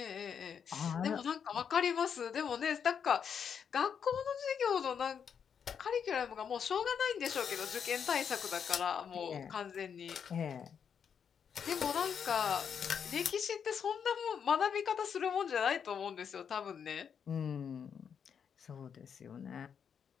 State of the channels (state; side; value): quieter; right; 7.3 dB